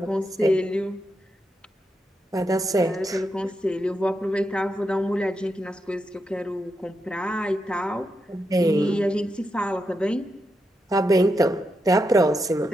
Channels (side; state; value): both; normal; correlation 0.85